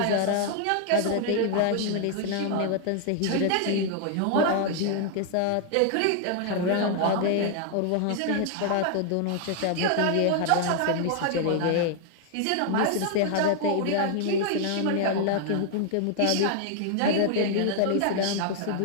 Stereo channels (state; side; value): different; both; correlation 0.00